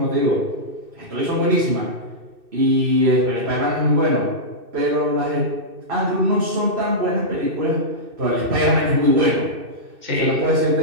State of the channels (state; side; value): late; left; 2.6 ms